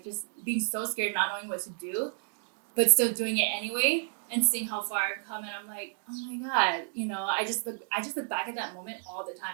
just being so scared, not knowing what to do, but still doing it anyway and seeing how far I've come. And I'm like, oh my God, you know, I just look back at that moment all the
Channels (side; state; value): left; silent; digital silence